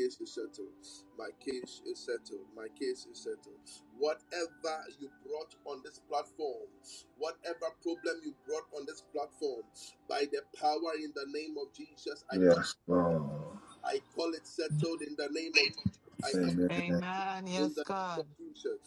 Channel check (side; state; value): both; identical; correlation 1.00